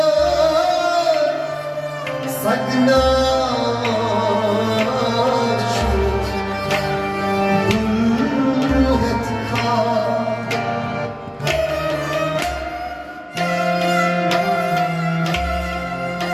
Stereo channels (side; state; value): both; identical; correlation 1.00